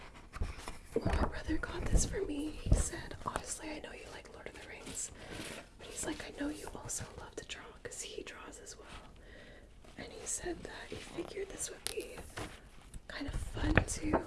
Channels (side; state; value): both; identical; correlation 1.00